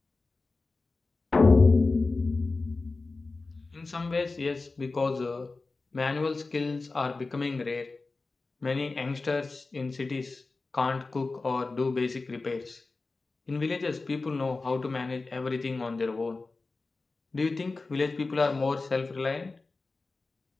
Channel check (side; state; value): right; quieter; 3.7 dB